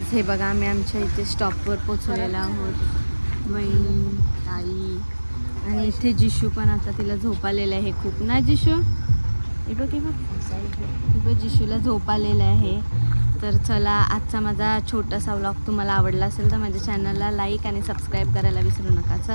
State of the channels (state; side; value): inverted; both; correlation -1.00